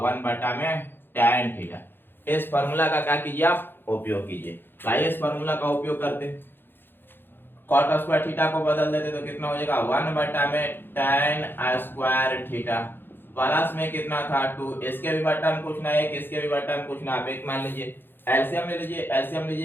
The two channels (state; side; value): late; right; 0.10 ms